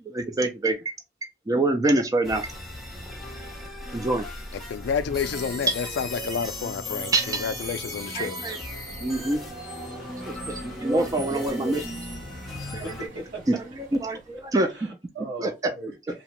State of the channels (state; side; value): normal; both; correlation 0.42